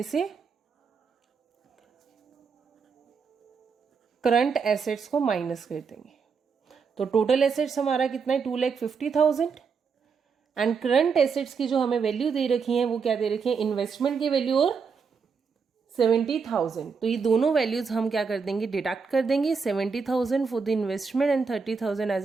से करंट एसेट्स को माइनस कर देंगे. तो टोटल एसेट्स हमारा कितना है, 2,50,000, एंड करंट एसेट्स की जो हमें वैल्यू दे रखी है वो क्या दे रखी है, इन्वेस्टमेंट की वैल्यू और 70,000. तो ये दोनों वैल्यूज हम क्या कर देंगे, डिडक्ट कर देंगे. 70,000 फॉर द इन्वेस्टमेंट एंड 30,000 एज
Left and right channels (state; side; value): quieter; left; 5.5 dB